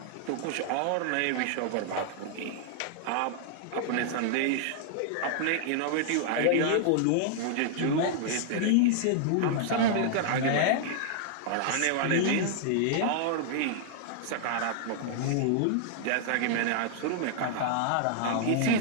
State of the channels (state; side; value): different; both; correlation -0.01